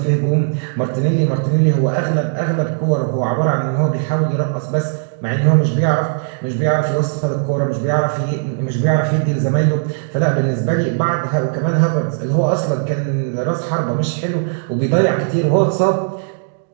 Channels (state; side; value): silent; left; digital silence